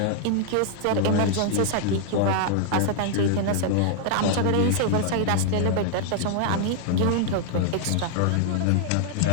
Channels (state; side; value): different; both; correlation 0.00